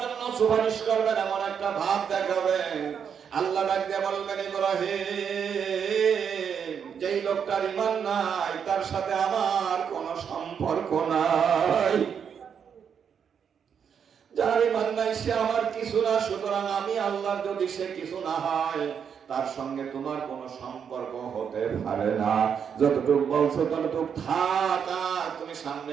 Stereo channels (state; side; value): quieter; left; 7.4 dB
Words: জন্য সুপারিশ করবেন, এমন একটা ভাব দেখাবেন। আল্লাহ ডাক দিয়ে বলবেন, ইব্রাহিম, যেই লোকটার ঈমান নাই তার সাথে আমার কোনো সম্পর্ক নাই। যার ঈমান নাই সে আমার কিছু না, সুতরাং আমি আল্লাহর যদি সে কিছু না হয় তার সঙ্গে তোমার কোনো সম্পর্ক হতে পারে না। যতটুকু বলছো ততটুকু থাক, তুমি